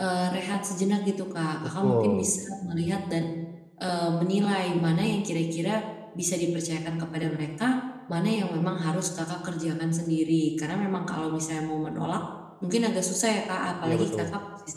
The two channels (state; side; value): identical; both; correlation 1.00